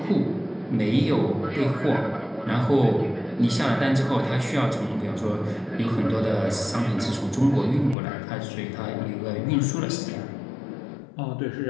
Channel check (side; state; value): right; drops out; at 8.0 s